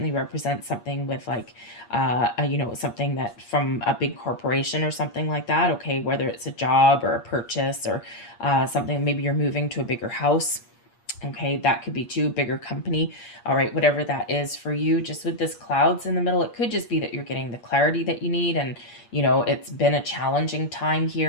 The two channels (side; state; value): right; late; 8.5 ms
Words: represent something with like, something that from a big corporation or something like that, okay? Whether it's a job or a purchase or something, maybe you're moving to a bigger house. Okay, that could be too, bigger company. All right, whatever that is for you, just with this clouds in the middle, it could just be that you're getting the clarity that you need, and it's been a challenging time